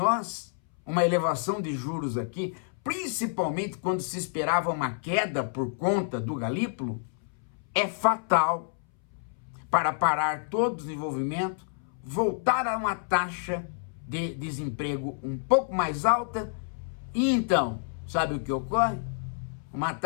uma elevação de juros aqui, principalmente quando se esperava uma queda por conta do Galípolo, é fatal para parar todo o desenvolvimento, voltar a uma taxa de desemprego um pouco mais alta e então, sabe o que ocorre? Uma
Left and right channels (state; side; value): silent; right; 59 dB below the other